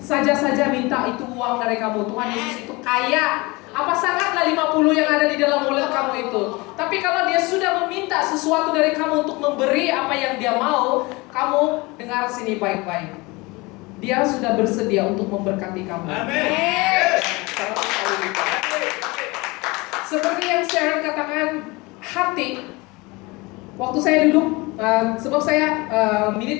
minta itu uang dari kamu. Tuhan Yesus itu kaya. Apa sangatlah 50 yang ada di dalam wallet kamu itu. Tapi kalau dia sudah meminta sesuatu dari kamu untuk memberi apa yang dia mau, kamu dengar sini baik-baik. Dia sudah bersedia untuk memberkati kamu. Amin. Seperti yang Sharon katakan, hati. Waktu saya duduk, sebab saya menit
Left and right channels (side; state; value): right; quieter; 24.3 dB